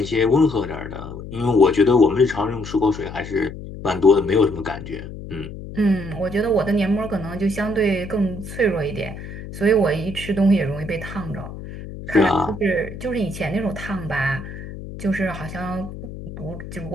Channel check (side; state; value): left; noise; hum, 11 dB below the sound